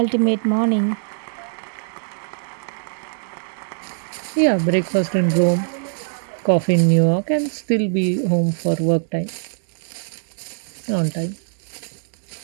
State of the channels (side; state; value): left; silent; digital silence